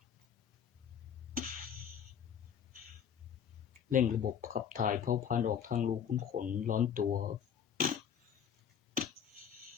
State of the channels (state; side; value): quieter; right; 8.2 dB